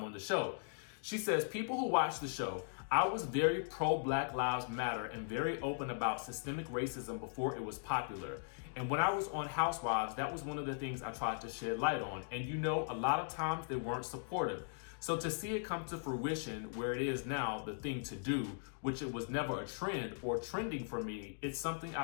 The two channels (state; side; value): silent; right; digital silence